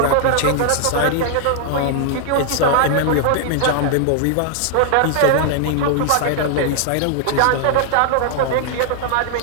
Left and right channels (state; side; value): different; both; correlation 0.00